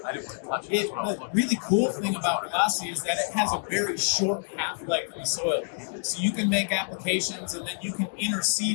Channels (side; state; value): right; silent; digital silence